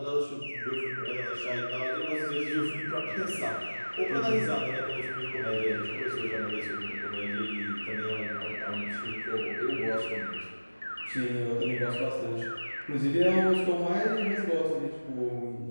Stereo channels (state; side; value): inverted; both; correlation -1.00